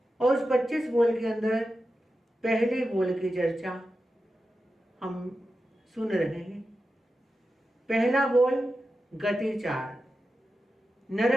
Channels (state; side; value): normal; both; correlation 0.91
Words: और उस 25 बोल के अंदर पहले बोल की चर्चा हम सुन रहे हैं। पहला बोल गति 4,